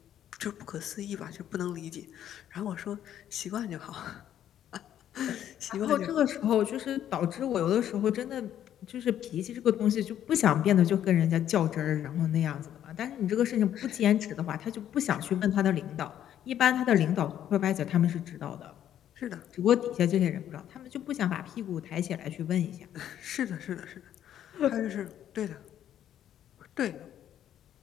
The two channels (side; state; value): right; quieter; 10.7 dB